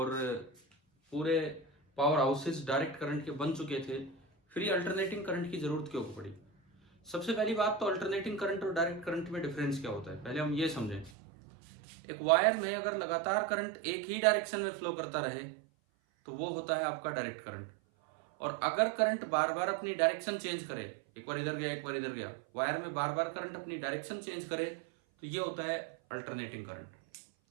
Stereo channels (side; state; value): left; drops out; at 11.1 s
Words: पूरे पावर हाउसेस डायरेक्ट करंट के बन चुके थे, फिर ये अल्टरनेटिंग करंट की ज़रूरत क्यों पड़ी? सबसे पहली बात तो अल्टरनेटिंग करंट और डायरेक्ट करंट में डिफरेंस क्या होता है, पहले हम ये समझें। एक वायर में अगर लगातार करंट एक ही डायरेक्शन में फ्लो करता रहे तो वो होता है आपका डायरेक्ट करंट। और अगर करंट बार बार अपनी डायरेक्शन चेंज करे, एक बार इधर गया एक बार इधर गया, वायर में बार बार करंट अपनी डायरेक्शन चेंज करे, तो ये होता है अल्टरनेटिंग करंट।